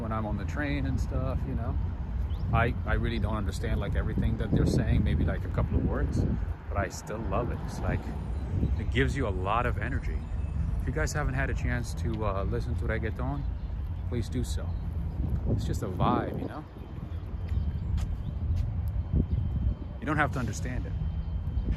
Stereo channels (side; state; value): both; identical; correlation 1.00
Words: I'm on the train and stuff, you know. I really don't understand like everything that they're saying, maybe like a couple of words, but I still love it. It's like, it gives you a lot of energy. If you guys haven't had a chance to listen to reggaeton, please do so. It's just a vibe, you know? You don't have to understand it.